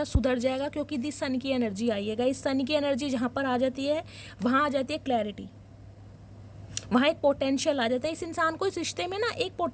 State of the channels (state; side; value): identical; both; correlation 1.00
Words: सुधर जाएगा, क्योंकि दी सन की एनर्जी आई है गाइज। सन की एनर्जी जहाँ पर आ जाती है वहाँ आ जाती है क्लैरिटी, वहाँ एक पोटेंशियल आ जाता है। इस इंसान को इस रिश्ते में ना एक